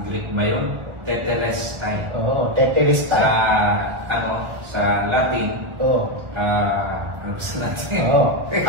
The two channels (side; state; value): left; late; 1.4 ms